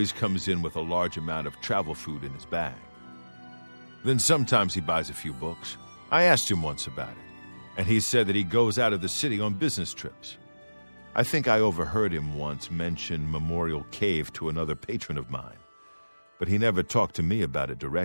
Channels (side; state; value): both; inverted; correlation -1.00